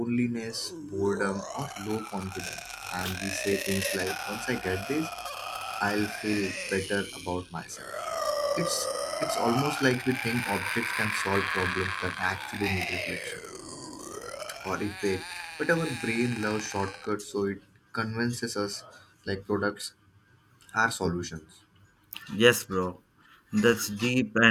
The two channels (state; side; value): identical; both; correlation 1.00